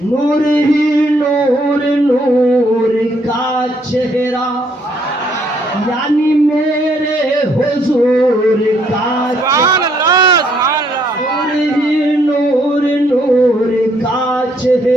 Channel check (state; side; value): normal; both; correlation 0.69